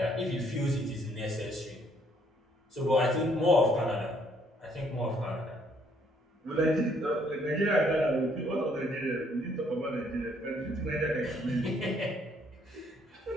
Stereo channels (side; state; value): both; normal; correlation 0.66